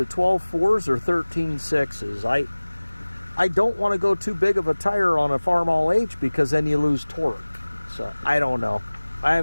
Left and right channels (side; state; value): both; inverted; correlation -1.00